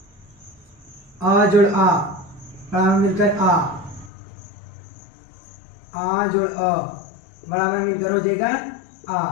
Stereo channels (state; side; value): drops out; right; at 4.1 s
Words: आ जोड़ आ बराबर मिलकर आ जोड़ अ बराबर मिलकर हो जाएगा आ।